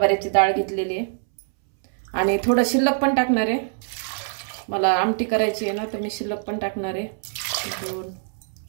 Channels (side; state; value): left; silent; 63 dB below the other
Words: डाळ घेतलेली आहे आणि थोडं शिल्लक पण टाकणार आहे, मला आमटी करायची आहे ना, तर मी शिल्लक पण टाकणार आहे। 2